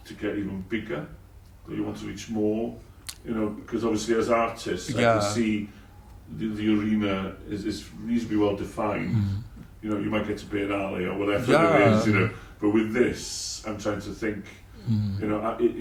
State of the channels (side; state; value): both; identical; correlation 1.00